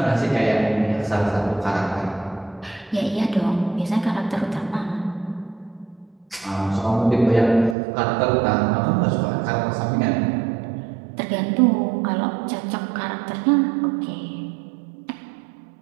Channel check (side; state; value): left; drops out; at 7.8 s